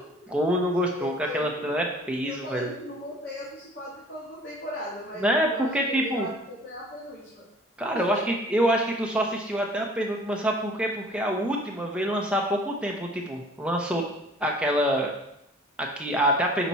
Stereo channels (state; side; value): normal; both; correlation 0.50